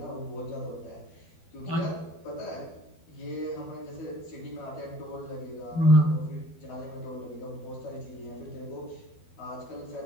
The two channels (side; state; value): right; late; 12 ms